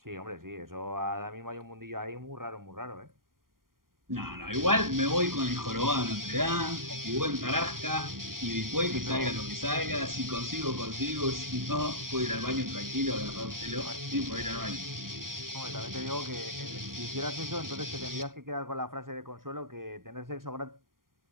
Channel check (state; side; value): late; left; 0.91 ms